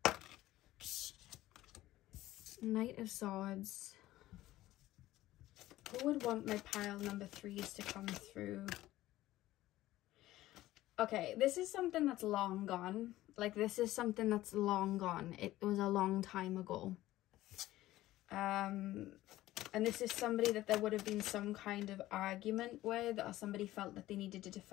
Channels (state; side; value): quieter; right; 15.8 dB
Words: Knight of Swords. Who would want my pile number 3s to come through? Okay, this is something that's long gone. Like, this is something that's long gone. It was a long time ago. And this is somebody that there would have been some kind of argument with, or somebody felt that they needed to